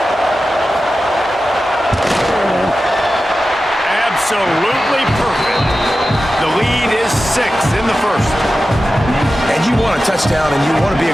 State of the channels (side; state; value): both; normal; correlation 0.93